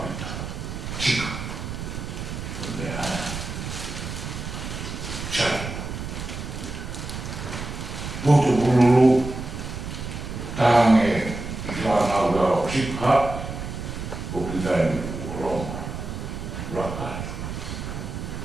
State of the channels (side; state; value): right; noise; rumble, 7 dB below the sound